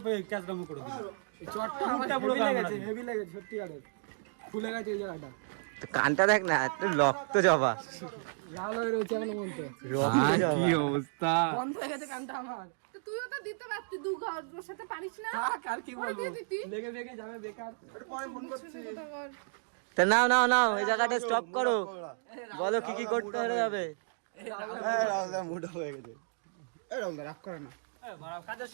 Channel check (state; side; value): silent; left; digital silence